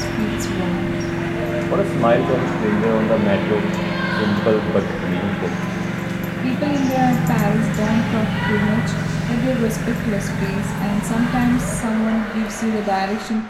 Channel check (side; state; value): both; identical; correlation 1.00